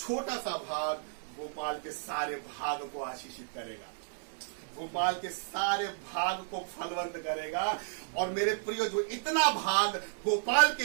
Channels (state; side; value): silent; left; 56 dB below the other